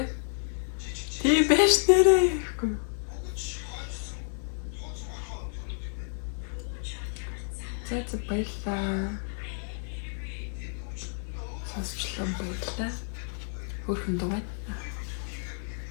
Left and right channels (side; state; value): right; silent; 58 dB below the other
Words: Тийм байж нэрээ. Зэт баярлаа. Сонсчлон баярлаа. Хөрхөн дугай.